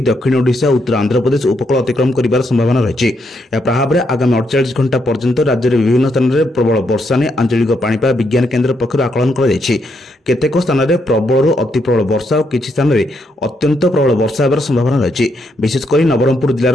दक्षिण ओडिशा उत्तर आंध्र प्रदेश उपकूल अतिक्रम कर संभावना रही। प्रभाव में आगामी 48 घंटा पर्यंत राज्य में विभिन्न स्थान में प्रबल वर्षा नहीं आंचलिक पाणीपाग विज्ञान केन्द्र पक्षर आकलन केतेक स्थान में प्रबल अति प्रबल वर्षा और किसी स्थान में अत्यंत प्रबल वर्षा होगार संभावना रही। विशेषकर नवरंगपुर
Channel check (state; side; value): normal; both; correlation 0.78